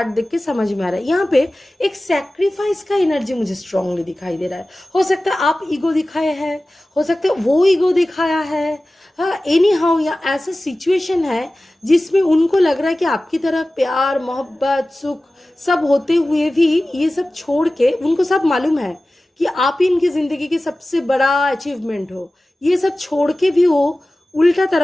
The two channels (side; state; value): both; normal; correlation 0.96